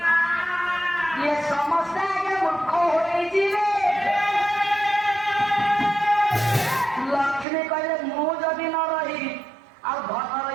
ଇଏ ସମସ୍ତେ ଆଗେ ମୂର୍ଖ ହୋଇଯିବେ ଲକ୍ଷ୍ମୀ କହିଲେ ମୁଁ ଯଦି ନ ରହିବି ଆଉ ଧନ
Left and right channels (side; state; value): left; drops out; at 7.5 s